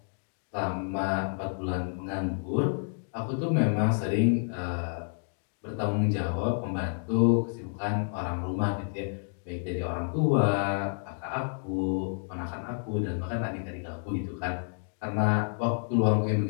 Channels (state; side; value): silent; right; digital silence